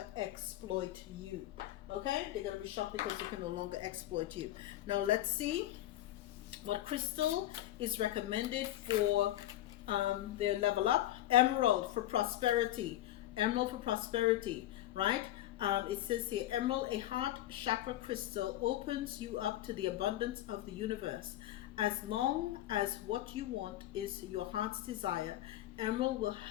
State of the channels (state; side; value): quieter; right; 14.3 dB